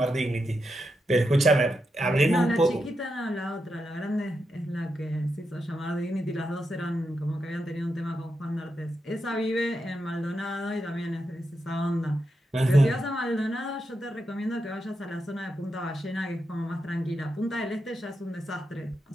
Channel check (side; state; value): both; normal; correlation 0.86